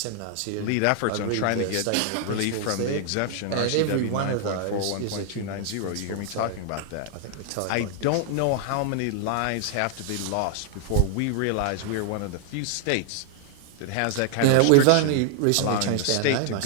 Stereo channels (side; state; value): both; different; correlation 0.00